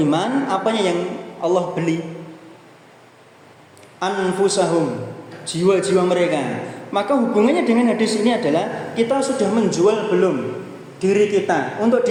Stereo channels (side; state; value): both; identical; correlation 1.00